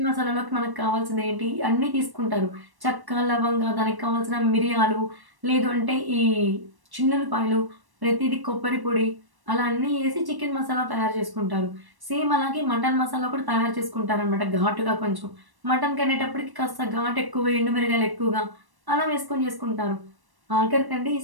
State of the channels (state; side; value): late; left; 1.1 ms